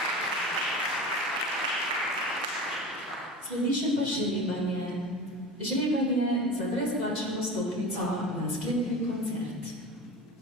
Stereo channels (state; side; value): normal; both; correlation 0.32